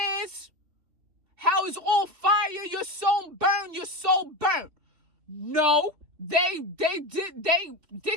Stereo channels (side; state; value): left; late; 3.0 ms